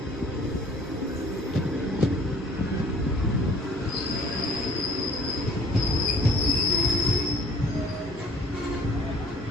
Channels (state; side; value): normal; both; correlation 0.54